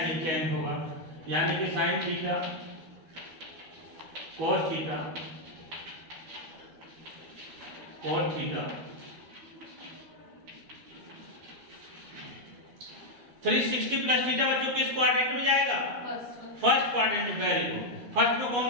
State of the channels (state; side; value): late; left; 12 ms